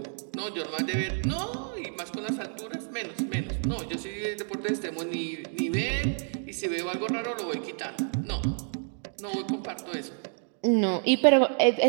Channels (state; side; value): silent; left; 59 dB below the other